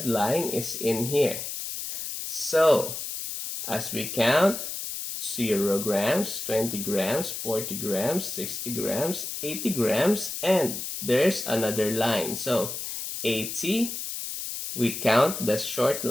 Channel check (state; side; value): noise; left; hiss, 6 dB below the sound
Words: line is in here. So as we count 0 grams, 20 grams, 40 grams, 60 grams, 80 grams, and there's another line. So 80, we count the short